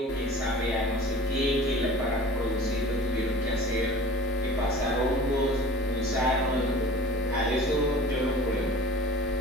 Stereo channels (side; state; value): both; normal; correlation 0.43